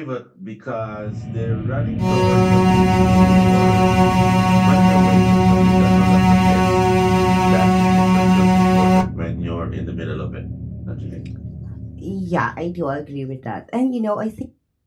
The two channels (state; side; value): identical; both; correlation 1.00